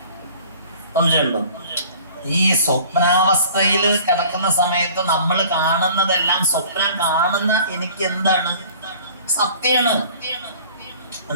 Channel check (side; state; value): both; inverted; correlation -0.48